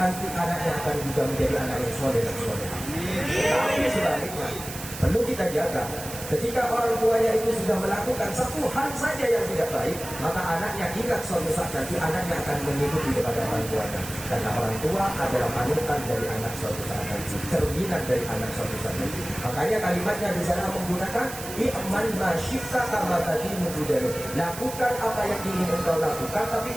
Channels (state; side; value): noise; right; hiss, 11 dB below the sound